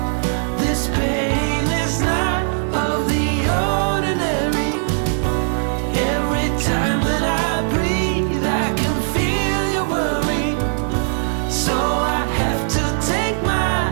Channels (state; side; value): silent; left; digital silence